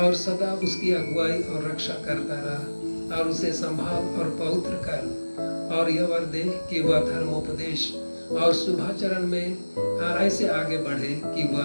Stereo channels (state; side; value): inverted; both; correlation -1.00